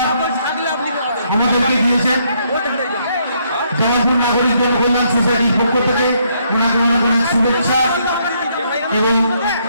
আমাদেরকে দিয়েছেন। জামালপুর নাগরিক জনকল্যাণ সোসাইটির পক্ষ থেকে ওনাকে অনেক অনেক শুভেচ্ছা এবং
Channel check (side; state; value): both; inverted; correlation -0.72